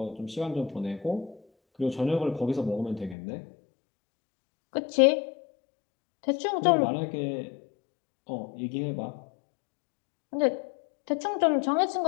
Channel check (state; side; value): drops out; right; at 3.2 s